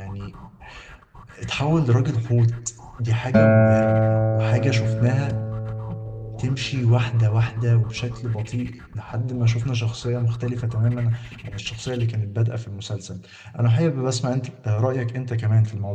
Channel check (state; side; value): identical; both; correlation 1.00